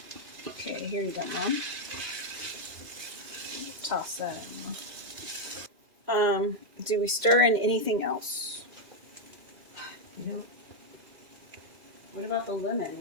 Okay, here you go, Mom. Toss that in. Do we stir in anything else? You know, What about the lemon?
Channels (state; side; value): late; left; 2.6 ms